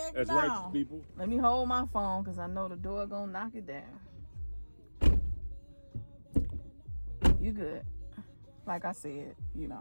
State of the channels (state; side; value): inverted; both; correlation -1.00